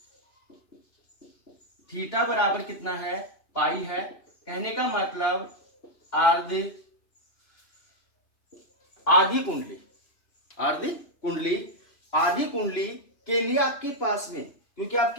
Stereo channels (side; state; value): right; late; 2.5 ms